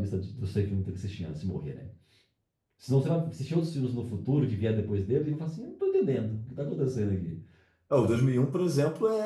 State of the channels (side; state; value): both; identical; correlation 1.00